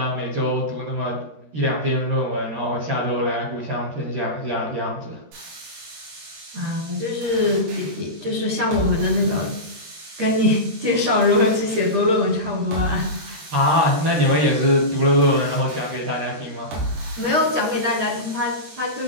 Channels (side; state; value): left; late; 13 ms